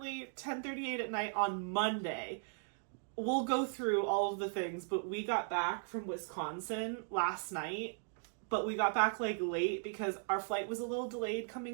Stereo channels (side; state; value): left; silent; digital silence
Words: 10:38 at night on Monday. We'll go through all of the things, but we got back from Wisconsin last night, but we got back like late because our flight was a little delayed